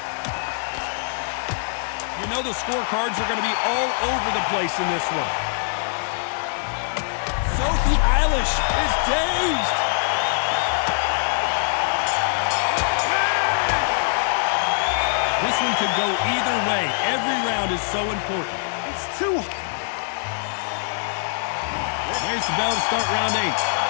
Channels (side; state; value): right; silent; digital silence